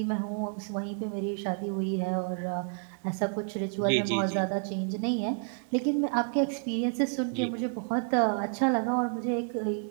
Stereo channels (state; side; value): silent; left; 56 dB below the other